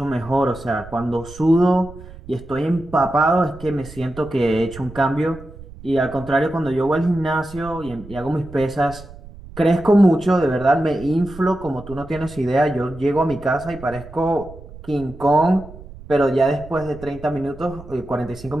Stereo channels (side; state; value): right; noise; rumble, 17 dB below the sound